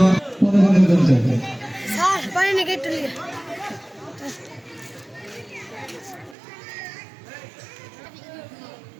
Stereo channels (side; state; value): left; drops out; at 6.4 s